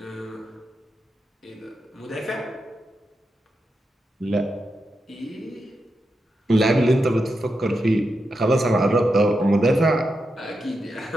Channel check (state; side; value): normal; both; correlation 0.87